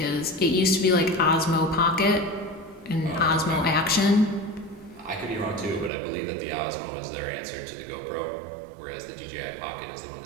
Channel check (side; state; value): left; drops out; at 5.9 s